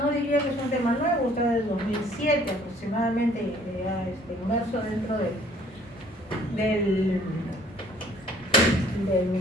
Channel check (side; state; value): both; normal; correlation 0.58